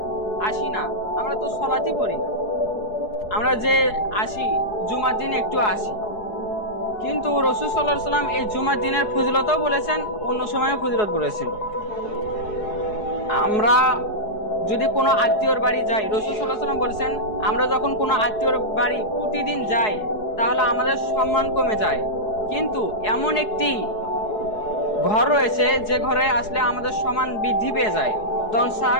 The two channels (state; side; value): late; right; 4.7 ms